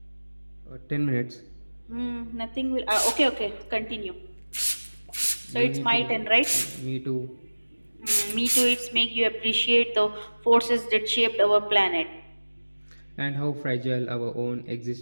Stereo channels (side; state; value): both; inverted; correlation -1.00